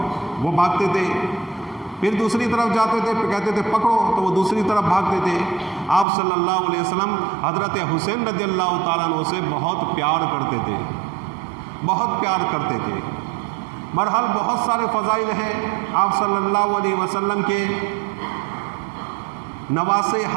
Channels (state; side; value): drops out; left; at 6.1 s